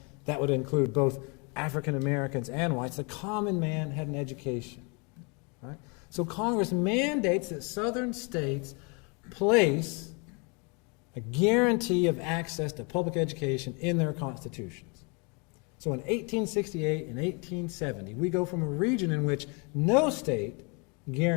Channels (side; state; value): right; quieter; 32.7 dB